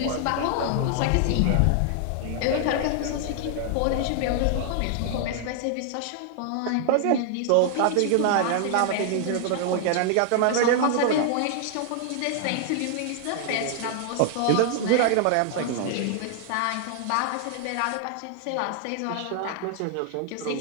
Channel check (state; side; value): different; both; correlation 0.00